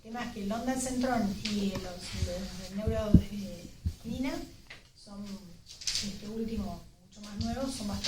temas que el onda centrón y los neuroquinina son, este último, mucho más nuevos, son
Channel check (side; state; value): both; identical; correlation 1.00